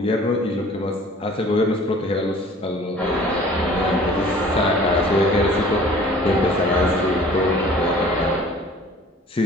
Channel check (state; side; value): normal; both; correlation 0.49